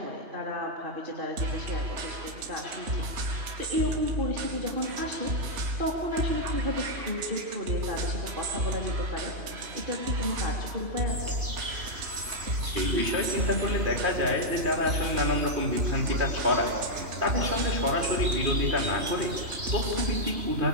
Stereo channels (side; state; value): left; late; 2.9 ms